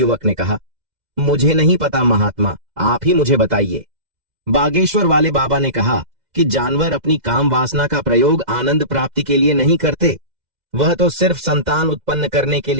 ने कहा, मुझे नहीं पता महात्मा, आप ही मुझे बताइए। बागेश्वर वाले बाबा ने कहा कि जानवर अपनी काम वासना का प्रयोग आनंद प्राप्ति के लिए नहीं करते, वह तो सिर्फ संतान उत्पन्न करने के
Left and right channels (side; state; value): left; late; 2.0 ms